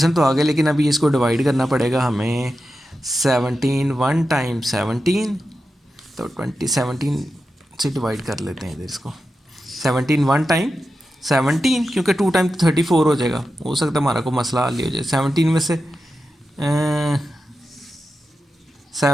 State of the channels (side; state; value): both; normal; correlation 0.91